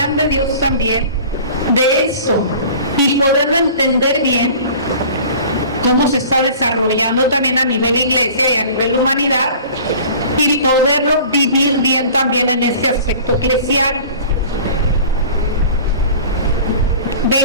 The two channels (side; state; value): both; inverted; correlation -0.43